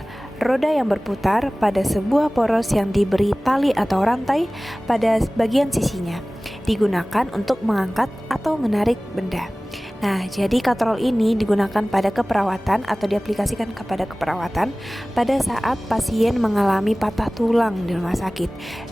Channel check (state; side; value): normal; both; correlation 0.98